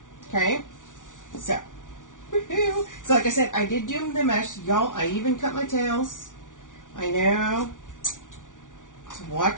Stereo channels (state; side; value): late; right; 0.87 ms